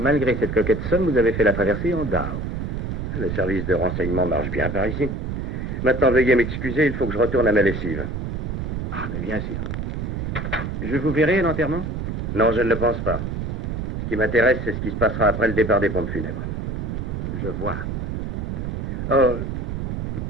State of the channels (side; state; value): right; noise; rumble, 3 dB below the sound